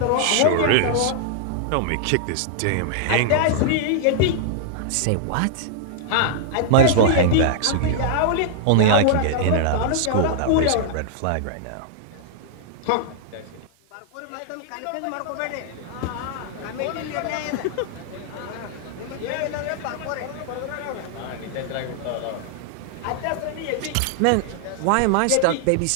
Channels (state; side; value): different; both; correlation -0.01